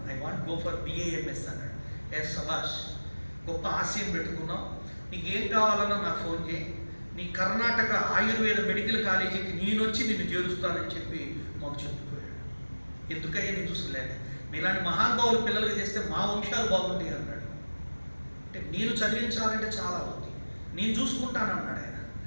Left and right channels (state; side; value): inverted; both; correlation -1.00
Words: I want go for BAMS అన్నాడు. సభాష్, గొప్ప ఆశయం పెట్టుకున్నాం, నీకు ఏం కావాలన్నా నాకు ఫోన్ చేయి, నీ కర్ణాటక ఆయుర్వేద మెడికల్ కాలేజీకి నేనొచ్చి నిన్ను చేరుస్తానని చెప్పి మాకు చెప్పుకోయాడు. ఎందుకయ్యా నేను చూసుకోలేను, మీలాంటి మహానుభావులు పిల్లలకి చేస్తే మా వంశాలు బాగుంటాయి అన్నాడు. అంటే నేను చదివించాలంటే చాలా ఉంది, నేను చూసుకుంటానన్నాడు ఆయన.